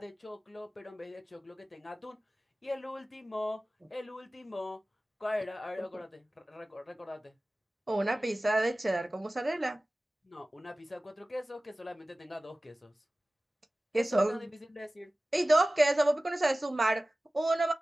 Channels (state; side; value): normal; both; correlation 0.97